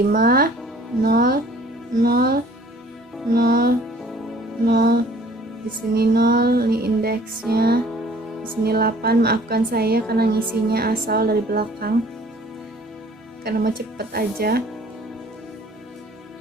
0, 0, 0, 0. Di sini 0, ini indeksnya. Di sini 8, maafkan saya karena ngisinya asal dari belakang. Karena mau cepet aja.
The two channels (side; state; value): both; normal; correlation 0.54